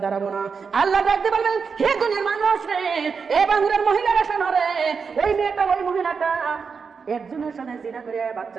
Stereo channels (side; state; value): left; quieter; 5.6 dB